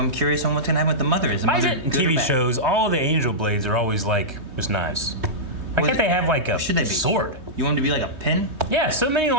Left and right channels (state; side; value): late; left; 3.2 ms